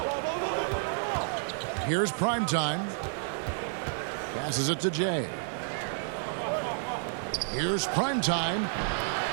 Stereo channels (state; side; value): silent; left; digital silence